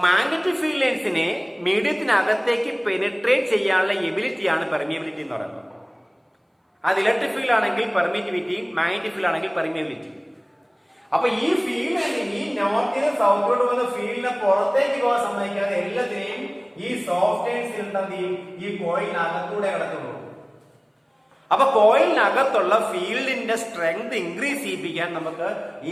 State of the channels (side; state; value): both; identical; correlation 1.00